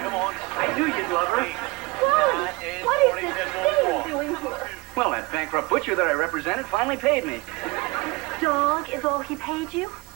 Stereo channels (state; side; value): quieter; left; 23.8 dB